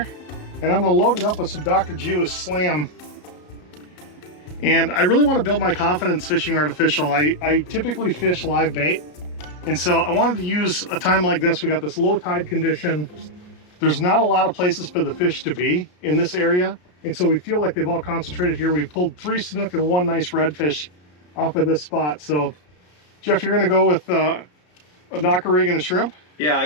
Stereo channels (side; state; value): right; late; 33 ms